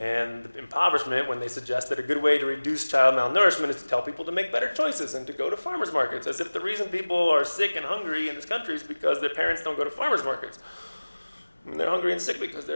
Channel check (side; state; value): both; inverted; correlation -1.00